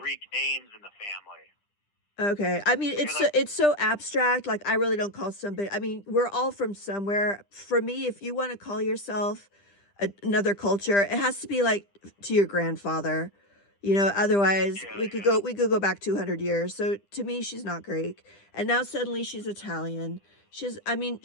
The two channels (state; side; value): late; right; 10 ms